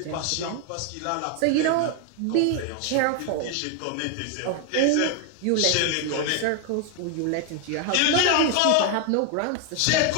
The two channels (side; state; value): both; different; correlation 0.01